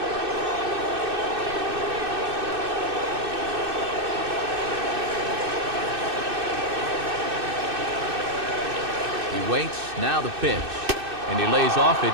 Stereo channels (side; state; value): left; late; 2.6 ms